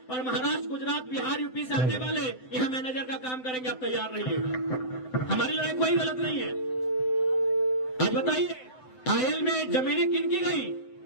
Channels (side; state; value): right; late; 7.8 ms